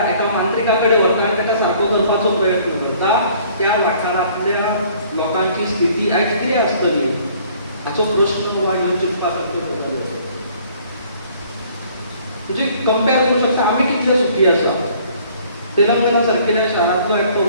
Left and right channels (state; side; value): inverted; both; correlation -0.57